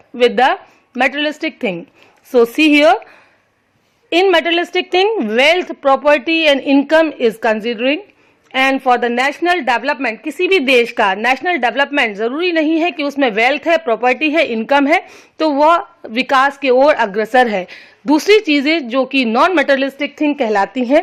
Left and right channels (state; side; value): identical; both; correlation 1.00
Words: with the materialistic thing? So see here, in materialistic thing, wealth, property and income is considering. And for the national development, किसी भी देश का national development जरूरी नहीं है कि उसमें wealth है, प्रॉपर्टी है, इनकम है तो वह विकास की ओर अग्रसर है. दूसरी चीजें जो कि नॉन मटेरियलिस्टिक थिंग कहलाती